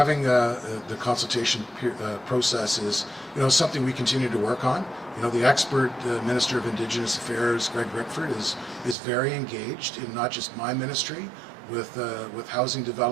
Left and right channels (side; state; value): left; drops out; at 9.0 s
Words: the consultation process is, something we continue to work on. The expert Minister of Indigenous Affairs, Greg Rickford, is very engaged in not just my ministry with housing